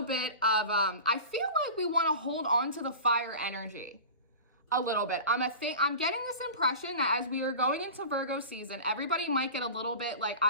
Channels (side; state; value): both; inverted; correlation -0.34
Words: bit of, I feel like we want to hold on to the fire energy a little bit. I'm getting this impression that as we are going into Virgo season, everybody might get a little bit like,